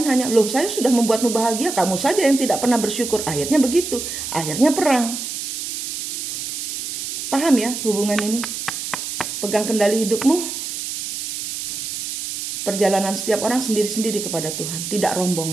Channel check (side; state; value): right; noise; hiss, 5 dB below the sound